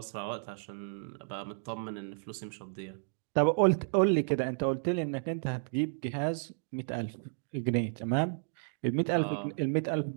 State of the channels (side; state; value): left; silent; digital silence